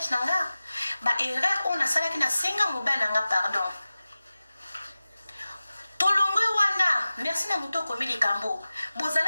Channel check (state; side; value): inverted; both; correlation -0.96